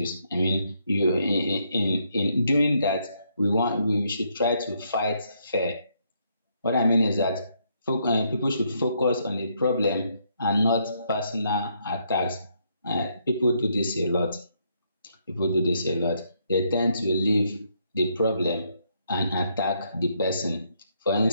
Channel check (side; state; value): both; inverted; correlation -0.74